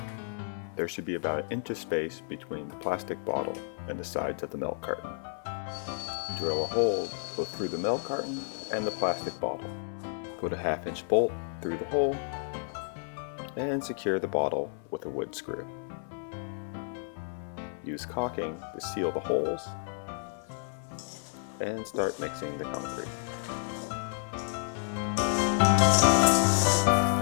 There should be about an inch of space between the plastic bottle and the sides of the milk carton. Drill a hole both through the milk carton and the plastic bottle. Put a 1/2 inch bolt through the hole and secure the bottle with a wood screw. Use caulking to seal the holes and start mixing the concrete.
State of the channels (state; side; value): silent; right; 57 dB below the other